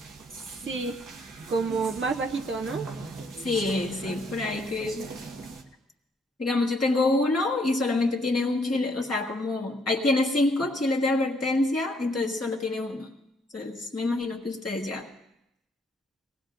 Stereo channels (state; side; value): normal; both; correlation 0.68